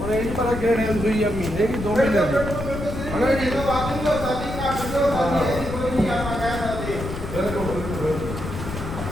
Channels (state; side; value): noise; left; rumble, 7 dB below the sound